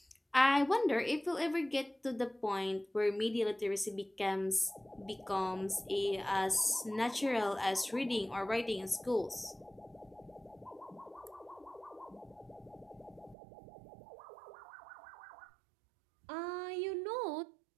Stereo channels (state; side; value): drops out; left; at 13.4 s